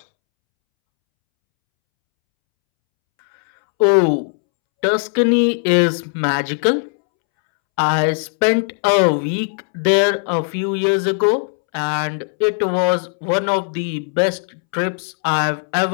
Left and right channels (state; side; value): silent; right; 67 dB below the other